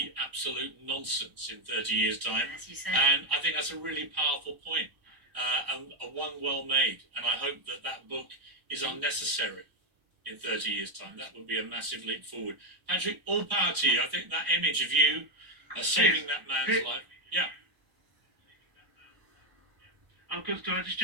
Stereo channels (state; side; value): late; left; 1.0 ms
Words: absolute nonsense in 30 years' time. As you said. And I think that's a really powerful point, and one well made. And I hope that that book is unnecessary in 30 years' time. That would be a massive leap forward. Patrick, all power to you. I think that image of you saving that man's life. Yeah. Could I just